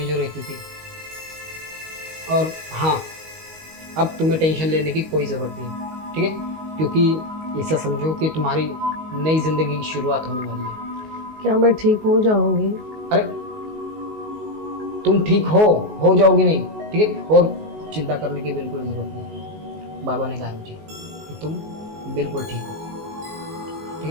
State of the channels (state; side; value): late; left; 19 ms